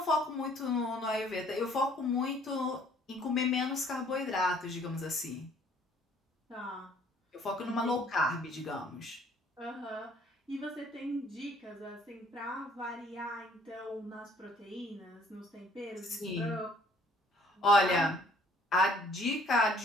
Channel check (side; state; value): both; normal; correlation 0.59